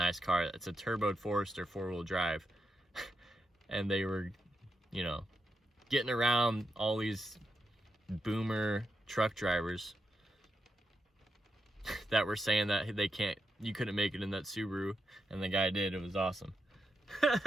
car. It's a turboed Forester, 4-wheel drive. And they were, you know, getting around all these boomer truck drivers that were saying that you couldn't make it in that Subaru, and the guy did. It was awesome.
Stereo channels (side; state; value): both; normal; correlation 0.85